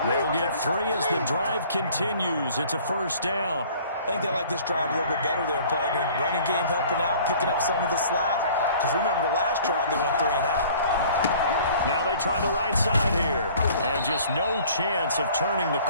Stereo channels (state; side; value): inverted; both; correlation -0.51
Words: They'll get 3 as the drive continues. It's a 1st down. I think they like this drive a little bit better there, partner. Running game helping out, picking up some of the slack. Because remember the last drive, they went 3-and-out. Now they try the right side here. And just no chance of turning the